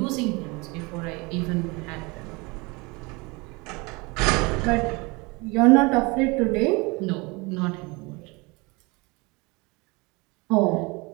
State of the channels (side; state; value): left; quieter; 26.5 dB